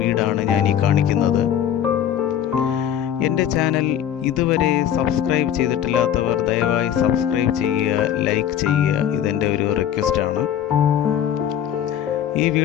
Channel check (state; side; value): quieter; right; 10.0 dB